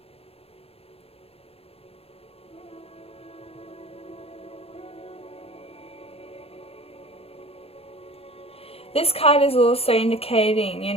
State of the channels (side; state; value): right; late; 0.28 ms